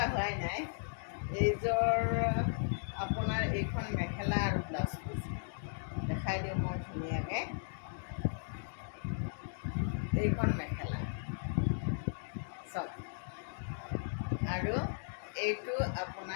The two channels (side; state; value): right; silent; digital silence